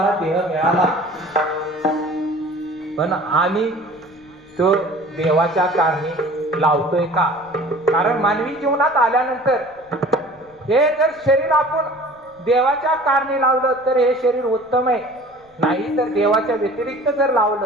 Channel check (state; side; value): noise; left; rumble, 30 dB below the sound